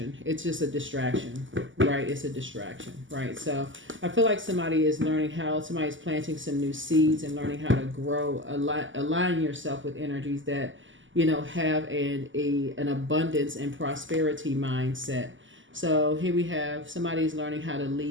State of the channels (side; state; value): left; late; 0.56 ms